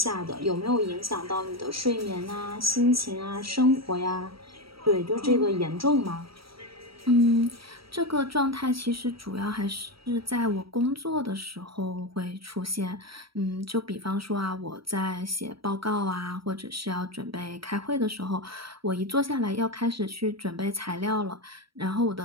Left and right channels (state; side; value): late; left; 0.75 ms